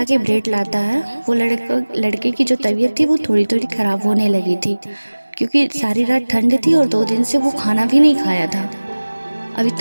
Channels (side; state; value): both; inverted; correlation -1.00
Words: ब्रेड लाता है। वो लड़के की जो तबीयत थी वो थोड़ी थोड़ी ख़राब होने लगी थी, क्योंकि सारी रात ठंड थी और 2 दिन से वो खाना भी नहीं खाया था। अब